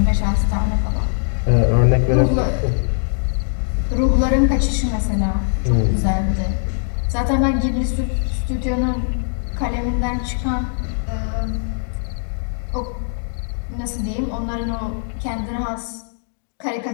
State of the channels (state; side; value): silent; right; digital silence